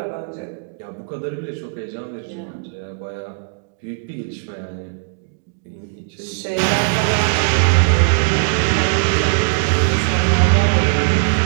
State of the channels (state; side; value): silent; left; digital silence